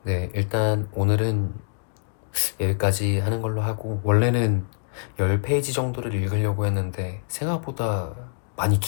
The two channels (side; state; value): right; silent; digital silence